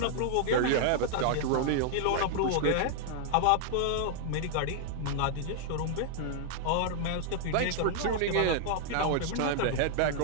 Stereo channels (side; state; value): both; different; correlation 0.00